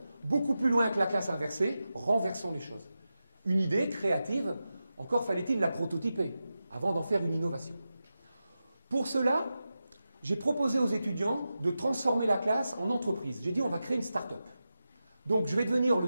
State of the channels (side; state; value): both; inverted; correlation -0.92